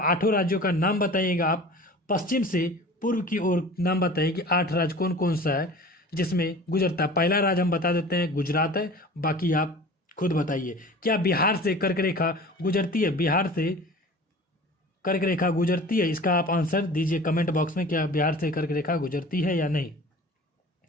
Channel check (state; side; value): normal; both; correlation 0.41